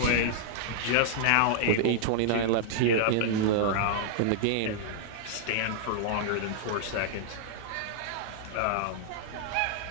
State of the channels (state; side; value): different; both; correlation -0.01